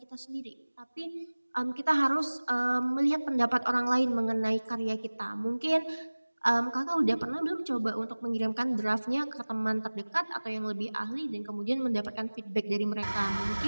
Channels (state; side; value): inverted; both; correlation -1.00